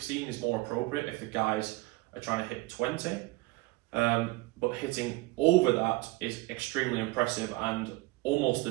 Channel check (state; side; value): quieter; left; 21.4 dB